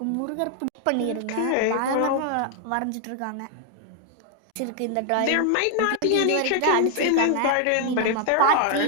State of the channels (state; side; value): different; both; correlation 0.00